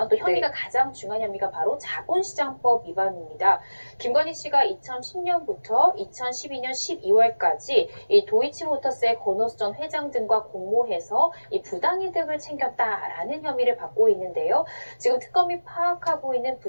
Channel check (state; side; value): inverted; both; correlation -1.00